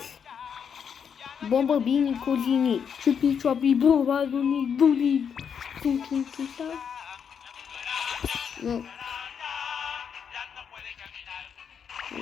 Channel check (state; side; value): quieter; right; 7.3 dB